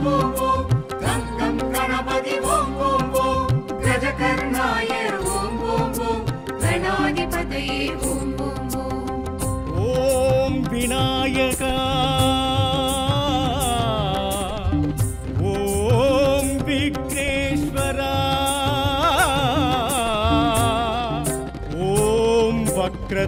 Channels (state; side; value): identical; both; correlation 1.00